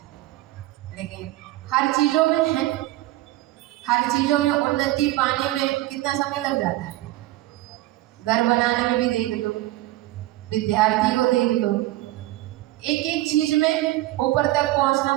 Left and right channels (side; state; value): left; quieter; 17.1 dB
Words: लेकिन हर चीजों में है, हर चीजों में उन्नति पाने में कितना समय लग जाता है। घर बनाने में भी देख लो, विद्यार्थी को देख लो, एक एक चीज में ऊपर तक पहुंचना